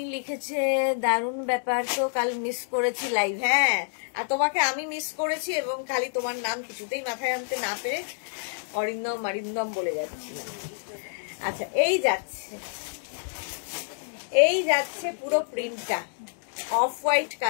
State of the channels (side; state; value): right; silent; digital silence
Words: লিখেছে দারুণ ব্যাপার তো, কাল মিস করেছি লাইভ। হ্যাঁ, আর তোমাকে আমি মিস করেছি, এবং খালি তোমার নাম কিছুতেই মাথায় আনতে না পেরে অরিন্দম অরিন্দম বলে যাচ্ছিলাম। আচ্ছা, এই যাচ্ছে পুরো প্রিন্টটা অফ হোয়াইট